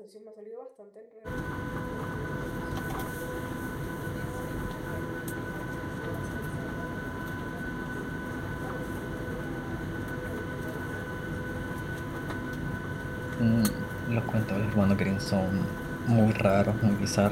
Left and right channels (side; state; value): both; identical; correlation 1.00